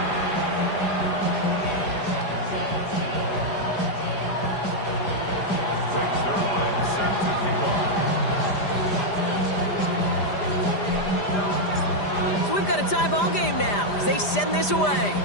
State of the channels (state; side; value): late; right; 5.0 ms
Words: Tie ball game now as they send this away.